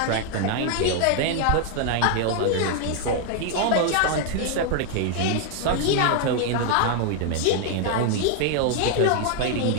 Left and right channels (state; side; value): different; both; correlation 0.00